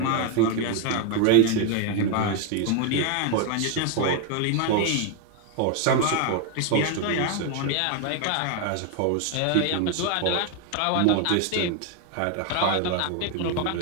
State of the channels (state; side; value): different; both; correlation 0.01